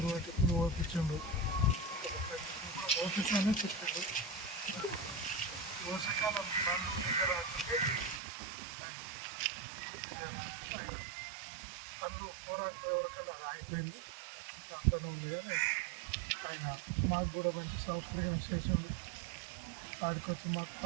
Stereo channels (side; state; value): left; drops out; at 8.2 s